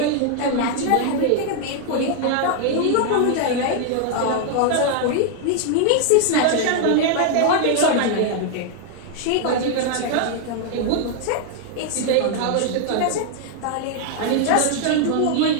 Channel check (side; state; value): both; different; correlation 0.00